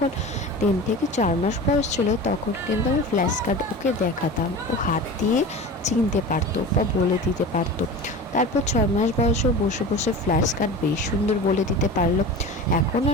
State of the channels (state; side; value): normal; both; correlation 0.33